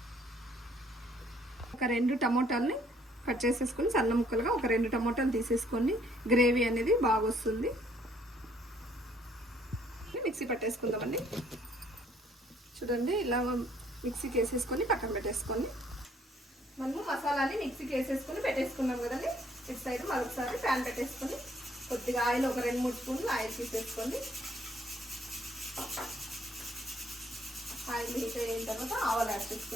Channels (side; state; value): both; normal; correlation 0.64